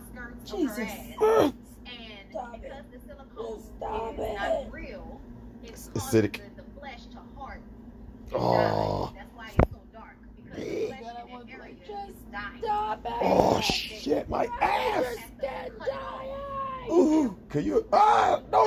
of her Jesus. ass. And Stop because the silicone Stop is it. not real, it's Acidic. causing the flesh to harden. Oh. That's why it's so dark. Because the Big. flesh in that area is dying. Stop it. Oh shit, my ass. Dead dying. Ooh, can you?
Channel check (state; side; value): identical; both; correlation 1.00